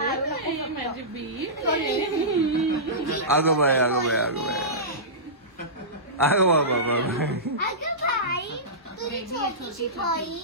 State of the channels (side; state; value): both; normal; correlation -0.18